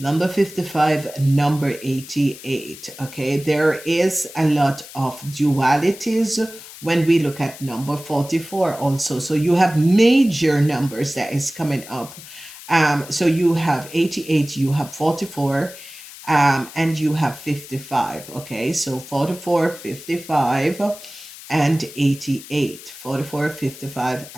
55, number 88. Okay, there is a lot of dualities when we look at number 44 also. So you have major numbers that is coming up. So you have 88, you have 44, and you have 55. Okay, so 44, 55 and 88. 44, 55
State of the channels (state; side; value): noise; left; hiss, 16 dB below the sound